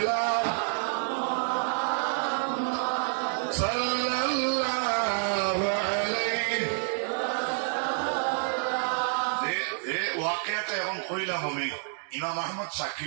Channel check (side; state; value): left; silent; 59 dB below the other